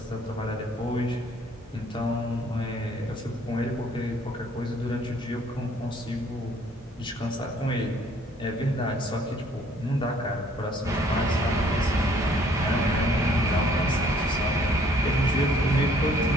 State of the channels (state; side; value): normal; both; correlation 0.60